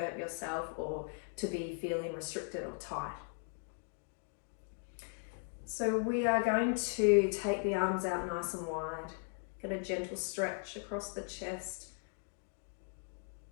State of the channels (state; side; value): silent; right; 52 dB below the other